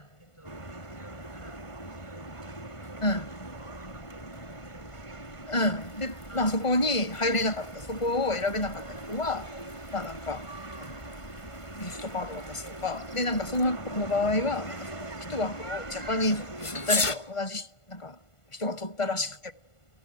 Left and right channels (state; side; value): late; right; 1.5 ms